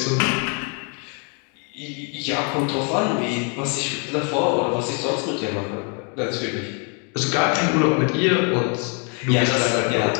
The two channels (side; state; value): right; quieter; 34.8 dB